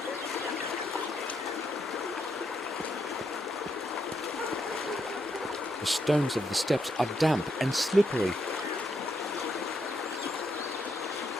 The stones of the steps are damp and slippery.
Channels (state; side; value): normal; both; correlation 0.78